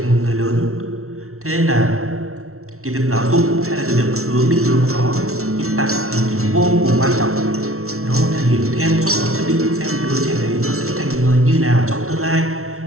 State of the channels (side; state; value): left; late; 0.63 ms